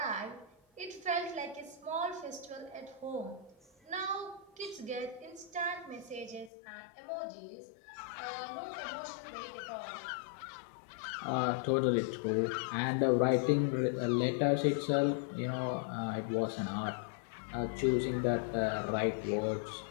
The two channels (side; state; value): right; drops out; at 6.5 s